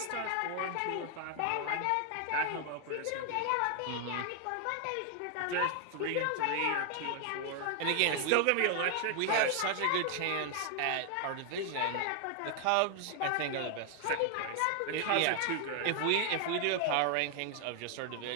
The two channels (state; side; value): different; both; correlation 0.00